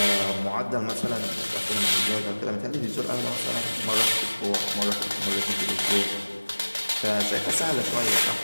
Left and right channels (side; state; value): both; inverted; correlation -1.00